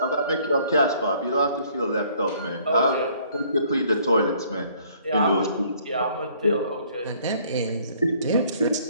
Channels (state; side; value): inverted; both; correlation -0.60